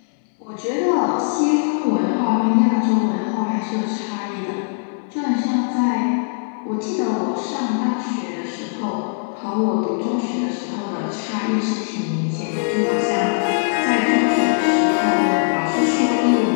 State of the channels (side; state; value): right; silent; digital silence